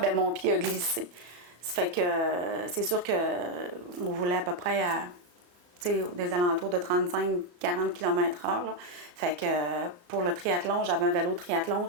mon pied a glissé. Ça fait que c'est sûr qu'on voulait à peu près des alentours de 35-40 km/h. Là. Fait que pour le triathlon, j'avais un vélo triathlon.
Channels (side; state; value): left; late; 34 ms